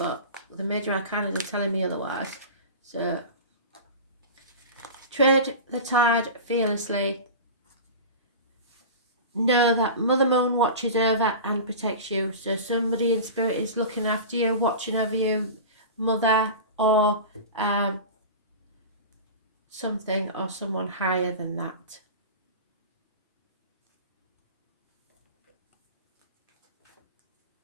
the major arcanas are telling me otherwise. So tread the tide fearlessly. know that Mother Moon watches over and protects you. So somebody in spirit is looking after you, watching over you, Mother, or something or someone higher than that.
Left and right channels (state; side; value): inverted; both; correlation -0.31